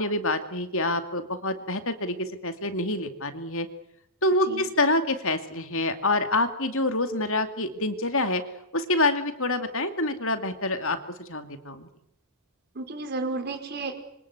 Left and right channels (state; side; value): normal; both; correlation -0.18